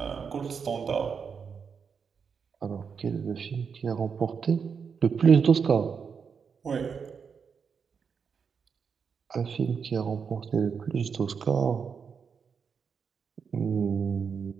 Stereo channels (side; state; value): left; quieter; 6.2 dB